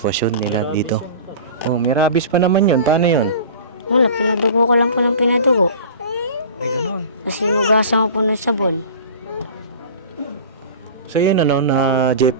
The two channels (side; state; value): both; inverted; correlation -0.38